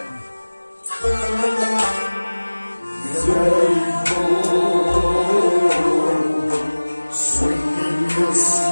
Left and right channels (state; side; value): inverted; both; correlation -1.00